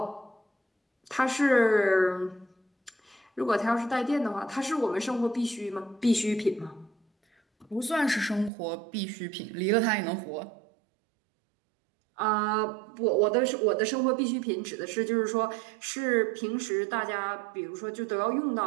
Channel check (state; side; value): drops out; left; at 8.5 s